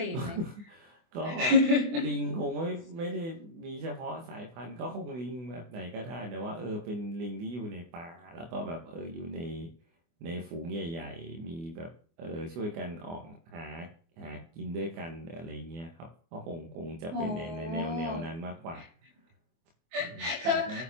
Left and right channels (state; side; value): late; left; 24 ms